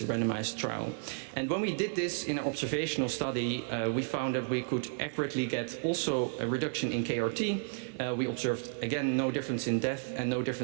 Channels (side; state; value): left; silent; 56 dB below the other